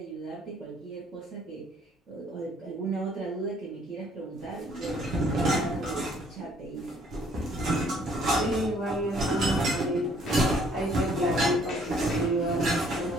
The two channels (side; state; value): both; normal; correlation 0.62